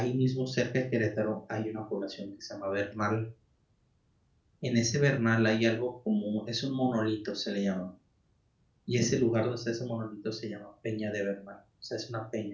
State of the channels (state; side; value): identical; both; correlation 1.00